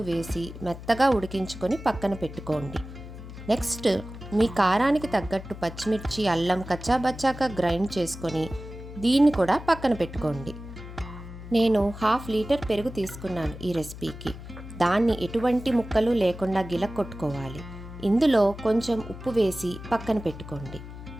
వేసి మెత్తగా ఉడికించుకొని పక్కన పెట్టుకోండి. నెక్స్ట్ మీ కారానికి తగ్గట్టు పచ్చిమిర్చి, అల్లం కచ్చాబచ్చాగా గ్రైండ్ చేసుకొని దీన్ని కూడా పక్కన పెట్టుకోండి. నేను 1/2 లీటర్ పెరుగు తీసుకున్నాను ఈ రెసిపీకి. దాన్ని ఎటువంటి ముక్కలు లేకుండా గిలక్కొట్టుకోవాలి. ఇందులో కొంచెం ఉప్పు వేసి పక్కన పెట్టుకోండి.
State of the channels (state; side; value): noise; left; hum, 13 dB below the sound